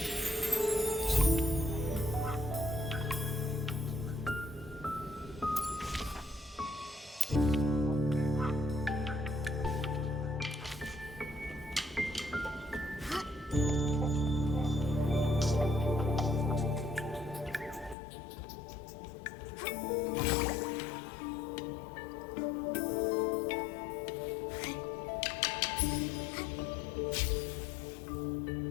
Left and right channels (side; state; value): right; drops out; at 17.9 s